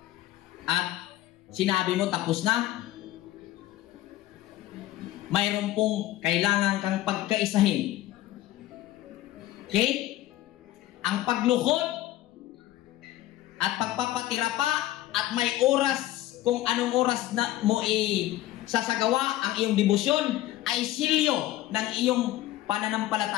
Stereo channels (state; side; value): quieter; right; 15.1 dB